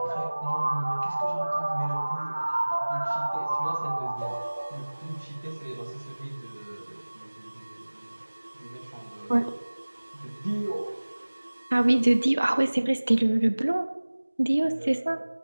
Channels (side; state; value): both; inverted; correlation -1.00